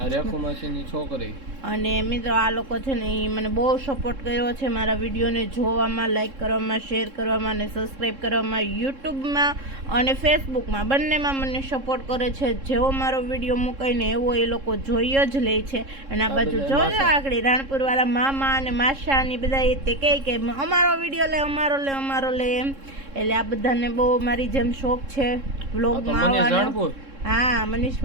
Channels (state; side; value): late; left; 3.7 ms